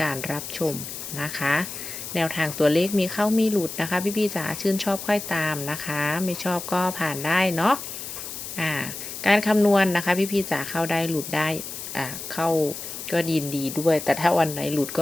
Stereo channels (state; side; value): noise; left; hiss, 9 dB below the sound